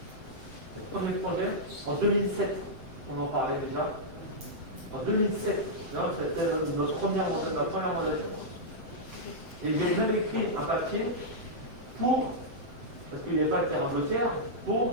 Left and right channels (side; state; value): left; late; 7.8 ms